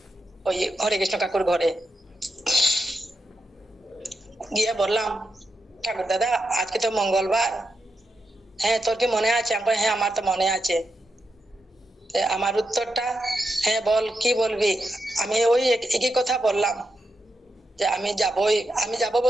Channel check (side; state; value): both; normal; correlation 0.86